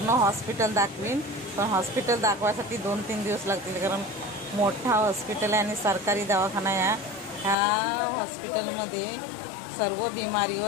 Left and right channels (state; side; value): drops out; right; at 7.6 s